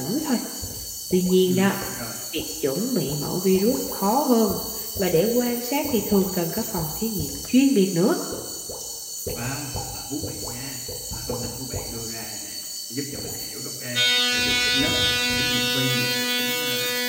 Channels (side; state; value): both; identical; correlation 1.00